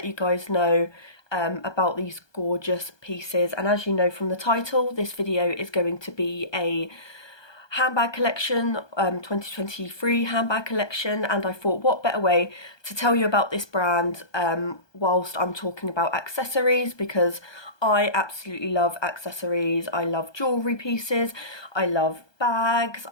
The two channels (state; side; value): late; right; 1.2 ms